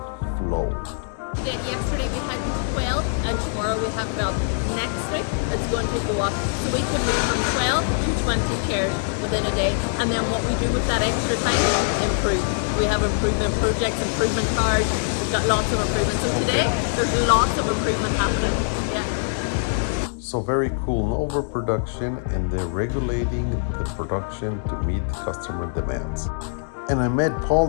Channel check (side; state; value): right; silent; digital silence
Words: flow. Yesterday we had 12 and tomorrow we have 12. Next week it's going to go up. So we can move from 12 to 20 chairs within a day. And then what we do with that extra time, improve. We have improvement projects, improvement cards. We've got lots of improvements. So today there's lots of improvement happening. Yeah. So very cool, no overproduction, and they're regulating the production to meet the customer demands. And I met Paul,